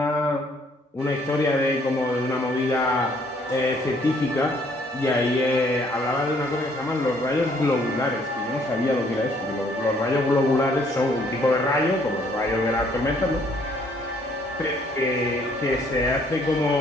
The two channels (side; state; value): both; normal; correlation 0.64